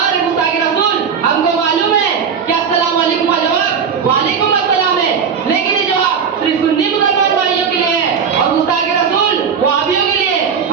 गुस्ताखे रसूल, हमको मालूम है कि अस्सलाम वालेकुम का जवाब वालेकुम अस्सलाम है, लेकिन ये जवाब सिर्फ सुन्नी मुसलमान भाइयों के लिए है और गुस्ताखे रसूल वहाबियों के लिए।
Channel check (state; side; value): quieter; left; 6.7 dB